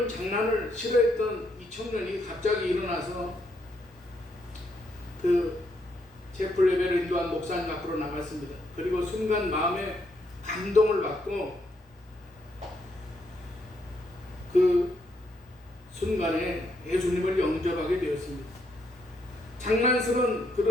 장난을 싫어했던 이 청년이 갑자기 일어나서 그 채플 예배를 인도한 목사님 앞으로 나갔습니다. 그리고 순간 마음에 감동을 받고 그 순간에 예수님을 영접하게 되었습니다. 장난스러운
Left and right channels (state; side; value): normal; both; correlation 0.76